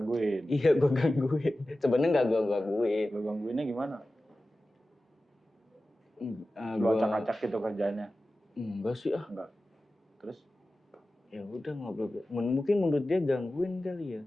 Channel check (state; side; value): normal; both; correlation 0.95